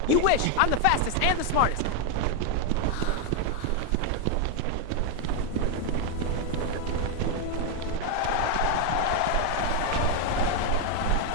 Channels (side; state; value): both; different; correlation 0.01